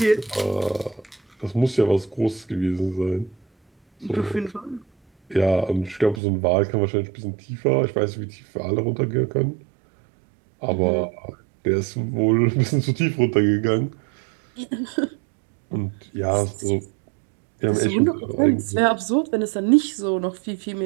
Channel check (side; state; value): left; drops out; at 6.2 s